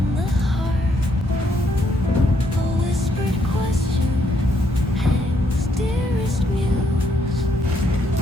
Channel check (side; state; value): both; normal; correlation 0.74